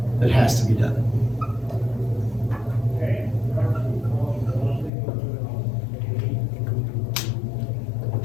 that has to be done.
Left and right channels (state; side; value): drops out; right; at 4.9 s